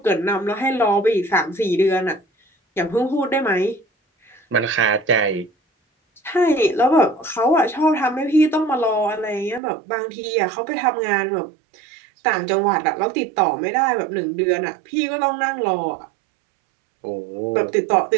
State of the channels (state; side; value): drops out; left; at 9.6 s